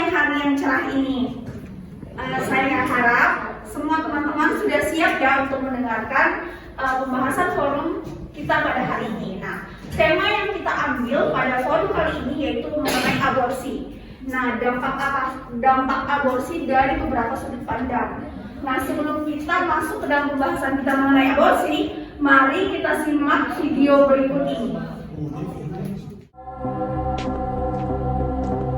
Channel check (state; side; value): identical; both; correlation 1.00